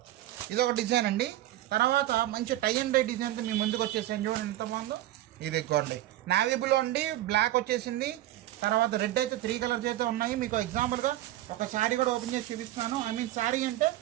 ఇదొక డిజైన్ అండి. తర్వాత మంచి టై అండ్ డై డిజైన్తో మీ ముందుకు వచ్చేసాను. చూడండి ఎంత బాగుందో. ఇదిగోండి, నావీ బ్లూ అండి, బ్లాక్ వచ్చేసింది. తర్వాత రెడ్ అయితే 3 కలర్స్ అయితే ఉన్నాయి. మీకు ఎగ్జాంపుల్గా ఒక శారీ కూడా ఓపెన్ చేసి చూపిస్తున్నాను. ఐ మీన్ శారీ అంటే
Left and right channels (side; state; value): left; quieter; 14.8 dB